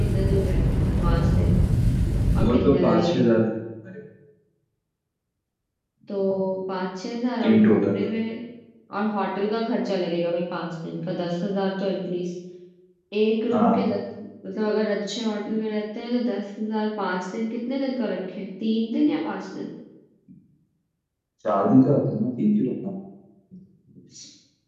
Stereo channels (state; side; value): identical; both; correlation 1.00